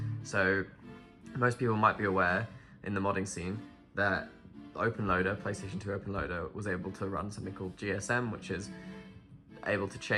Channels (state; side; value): identical; both; correlation 1.00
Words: So most people might be aware in the modding scene that OpenLoader, PlayStation 2 OpenLoader, was able to run something called GSM, which is able to